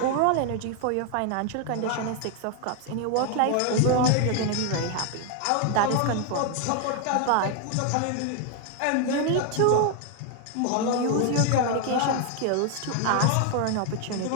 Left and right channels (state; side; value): different; both; correlation 0.01